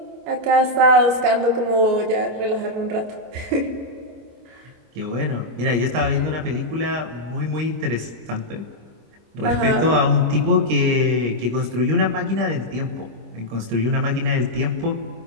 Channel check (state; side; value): late; left; 26 ms